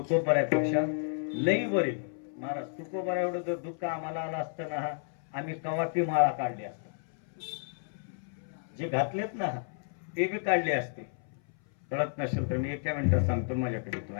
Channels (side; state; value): right; silent; 57 dB below the other